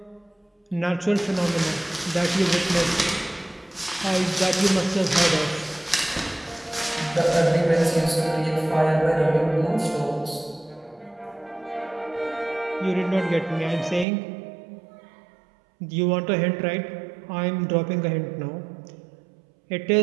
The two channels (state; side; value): drops out; left; at 14.1 s